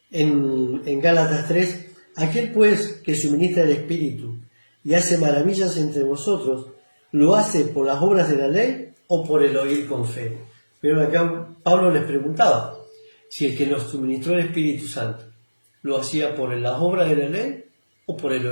en Gálatas 3, aquel pues que suministra el Espíritu y hace maravillas entre vosotros, ¿lo hace por las obras de la ley o por el oír con fe? Pero acá Pablo les preguntaba si el que nos suministró el Espíritu Santo lo hacía por las obras de la ley o por el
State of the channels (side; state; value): both; inverted; correlation -1.00